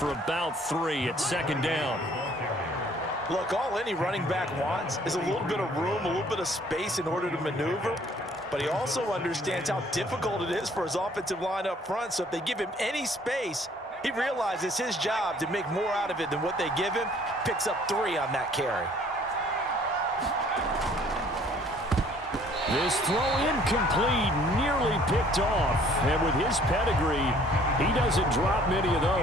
about 3 at 2nd down. Look, all any running back wants is a little bit of room, a little bit of space in order to maneuver, but he also understands how difficult it is for his offensive line up front, so if they give him any space, he realizes his job to make more out of it than what they give him, picks up 3 on that carry. This throw incomplete, nearly picked off. And with his pedigree, he doesn't drop many of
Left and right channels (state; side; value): normal; both; correlation 0.58